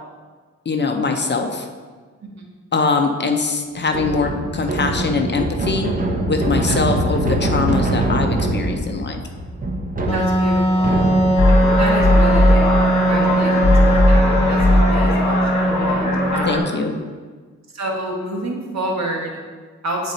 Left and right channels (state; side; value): normal; both; correlation 0.63